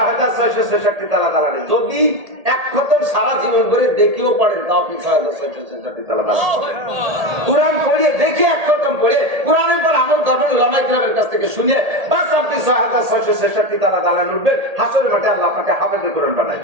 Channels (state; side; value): late; left; 1.8 ms